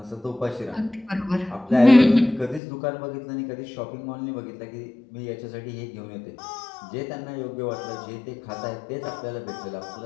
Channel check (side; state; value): right; drops out; at 2.6 s